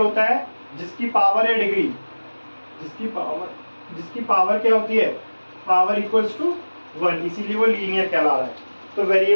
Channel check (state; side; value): inverted; both; correlation -1.00